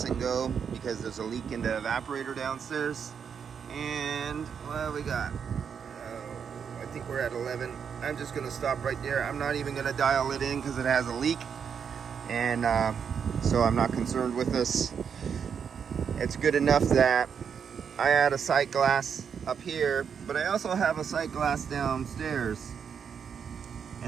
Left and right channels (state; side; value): quieter; left; 7.1 dB